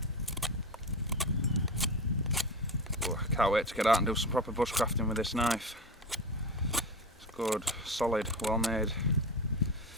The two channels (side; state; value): both; normal; correlation 0.25